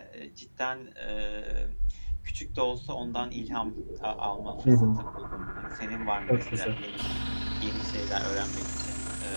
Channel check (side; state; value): both; inverted; correlation -1.00